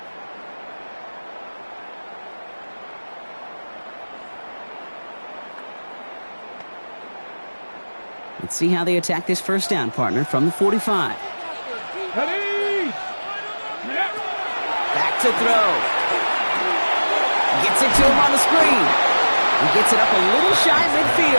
Let's see how they attack this first down, partner, from the 45. Ready? Back to throw. Gets it to him on the screen. He gets it up a little shy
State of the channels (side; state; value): both; inverted; correlation -1.00